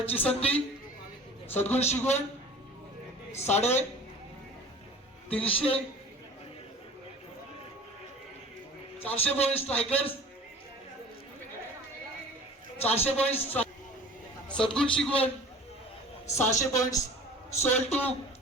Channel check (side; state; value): both; normal; correlation 0.43